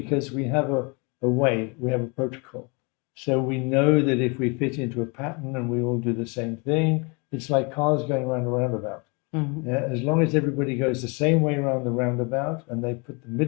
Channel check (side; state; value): right; quieter; 31.3 dB